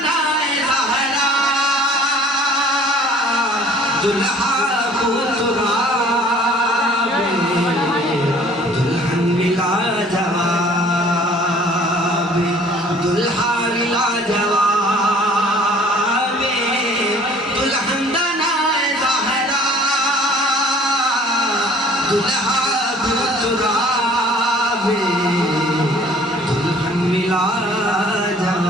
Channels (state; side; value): normal; both; correlation 0.52